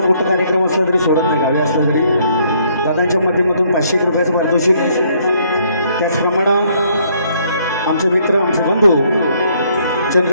मोठा कार्यक्रम असला तरी सोडत नाही, गावी असला तरी दादांच्या माध्यमातून 500 रुपयाचं पारितोषिक. त्याचप्रमाणे आमचे मित्र आमचे बंधू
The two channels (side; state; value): both; inverted; correlation -0.67